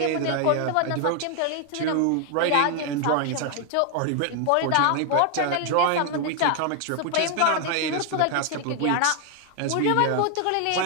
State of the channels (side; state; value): both; different; correlation 0.00